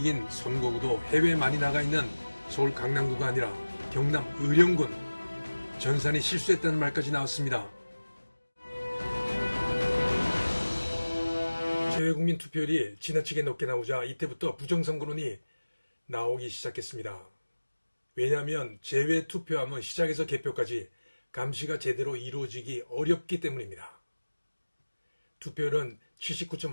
선거구도 해외에 많이 나가 있는 서울 강남구가 아니라 경남 의령군. 전산이 실수했다는 말까지 나왔습니다. 재외국민 투표율이 지나치게 높게 나오자 이때부터 부정선거론이 나오기 시작했습니다. 왜냐하면 재외투표함은 시작에서 개표까지 감시가 제대로 이루어지기 어렵기 때문입니다. 투표율은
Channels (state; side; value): inverted; both; correlation -1.00